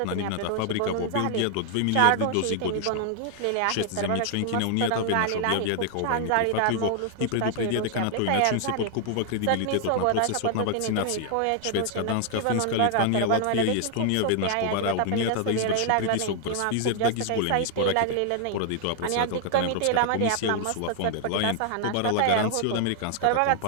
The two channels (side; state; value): both; different; correlation 0.00